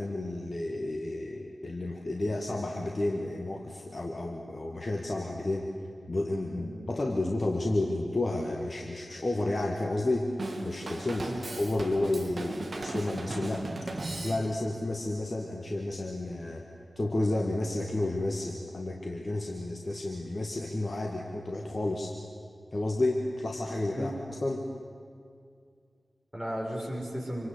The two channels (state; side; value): normal; both; correlation 0.96